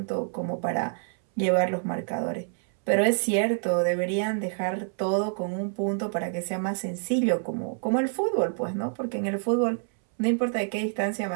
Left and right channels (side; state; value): left; silent; 60 dB below the other